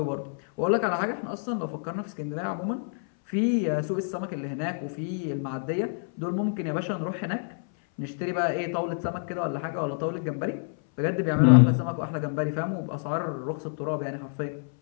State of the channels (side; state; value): right; silent; 58 dB below the other